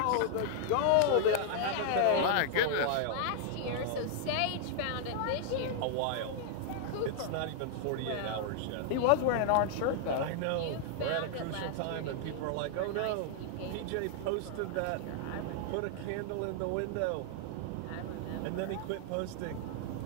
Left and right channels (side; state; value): both; different; correlation -0.01